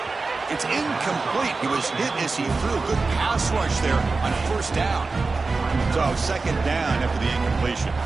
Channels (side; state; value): left; quieter; 4.0 dB